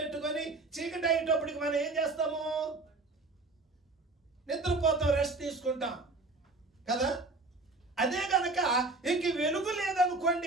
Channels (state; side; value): quieter; left; 3.3 dB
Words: చీకటి అయ్యేటప్పటికి మనం ఏం చేస్తాము? నిద్రపోతాం, రెస్ట్ తీసుకుంటాం కదా. అదే కనుక ఇంక వెలుగు